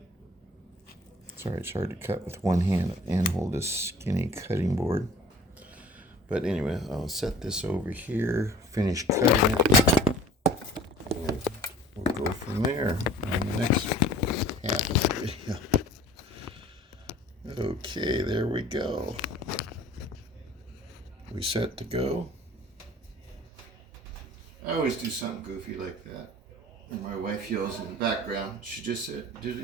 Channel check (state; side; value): normal; both; correlation 0.48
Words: Sorry, it's hard to cut with one hand and hold this skinny cutting board. But anyway, I'll set this over here, finish cutting it, and we'll go from there on the next half of the video. Okay, there we go. We set to go. I always do something goofy like that. And my wife yells in the background. She just said, did